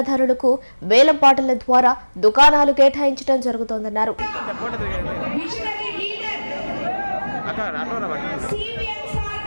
వేలం పాటల ద్వారా దుకాణాలు కేటాయించడం జరుగుతోందన్నారు.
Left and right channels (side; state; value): both; inverted; correlation -1.00